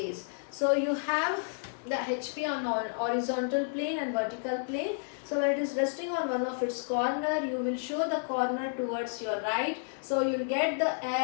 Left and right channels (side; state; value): right; silent; 57 dB below the other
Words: So you have the HP on horizontal plane and vertical plane. So when it is resting on one of its corner, you will show the corner towards your right. So you will get the